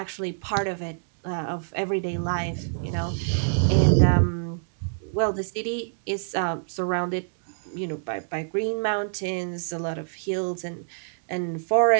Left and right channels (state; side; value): silent; left; digital silence